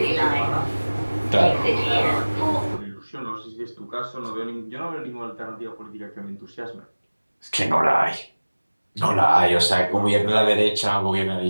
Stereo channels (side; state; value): both; inverted; correlation -1.00